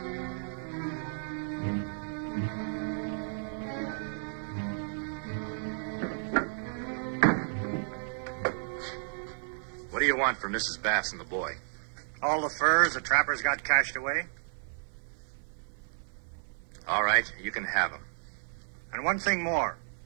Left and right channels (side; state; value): left; silent; 56 dB below the other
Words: What do you want for Mrs. Bass and the boy? All the furs the trappers got cached away. All right, you can have them. And one thing more.